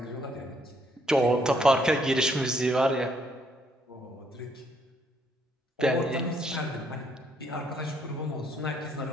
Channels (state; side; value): normal; both; correlation 0.70